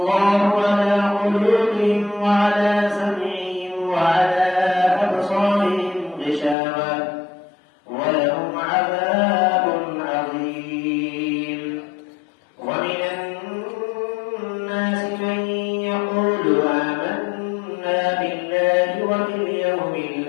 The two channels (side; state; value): right; drops out; at 6.6 s